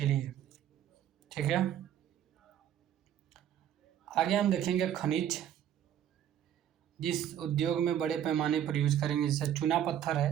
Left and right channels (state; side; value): quieter; left; 10.4 dB